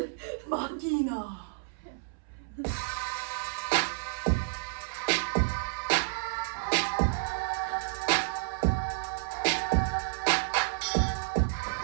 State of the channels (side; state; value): left; silent; 57 dB below the other